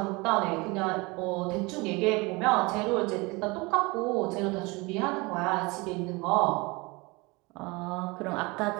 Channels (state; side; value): quieter; left; 25.4 dB